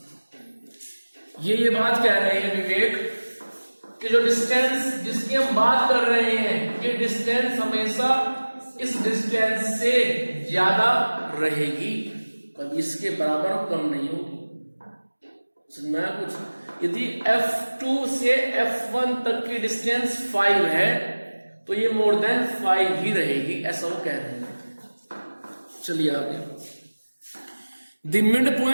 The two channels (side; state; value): both; inverted; correlation -1.00